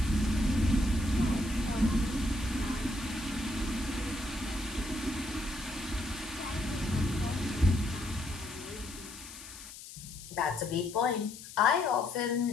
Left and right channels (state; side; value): noise; left; hiss, 14 dB below the sound